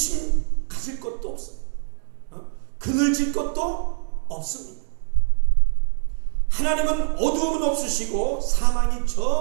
가질 것도 없어요. 그늘질 것도 없습니다. 하나님은 어두움은 없으시고 사망이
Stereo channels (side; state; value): left; silent; 56 dB below the other